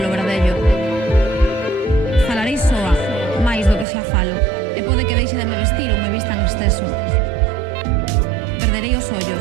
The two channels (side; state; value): left; drops out; at 3.9 s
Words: verdello. Falarei soa, máis do que xa falo, e pode que deixe de me vestir ou me vista en exceso. Perderei os